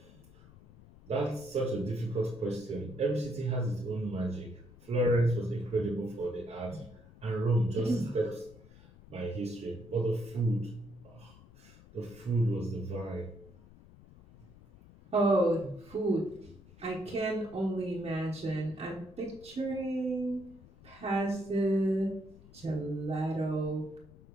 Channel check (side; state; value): left; noise; rumble, 22 dB below the sound